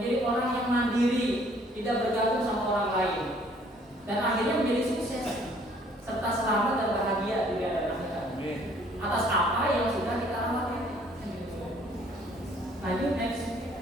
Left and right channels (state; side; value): normal; both; correlation 0.60